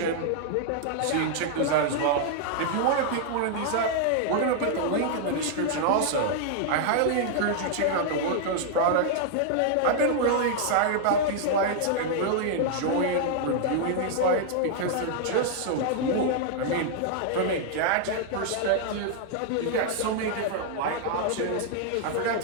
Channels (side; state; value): both; different; correlation -0.01